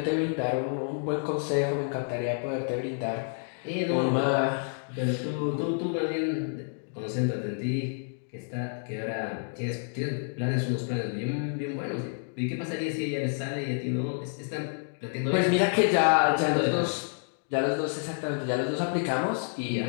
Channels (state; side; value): silent; right; 59 dB below the other